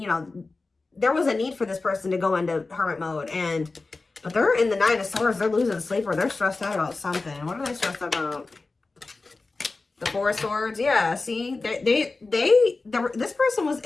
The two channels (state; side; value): quieter; right; 3.6 dB